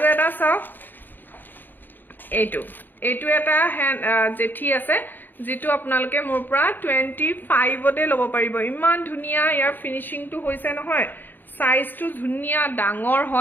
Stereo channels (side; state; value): right; late; 0.091 ms